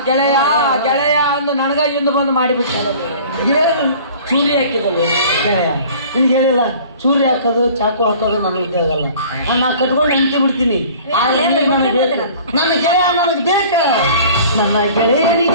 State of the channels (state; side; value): inverted; both; correlation -0.47